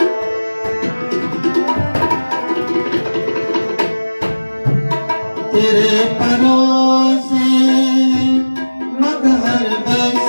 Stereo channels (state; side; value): inverted; both; correlation -1.00